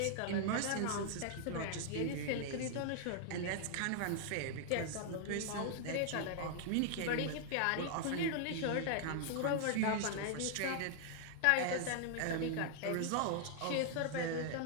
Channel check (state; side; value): different; both; correlation 0.00